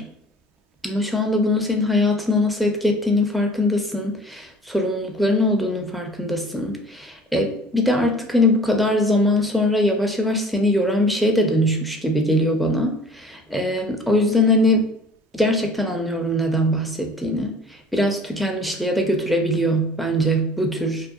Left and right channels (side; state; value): both; normal; correlation 0.48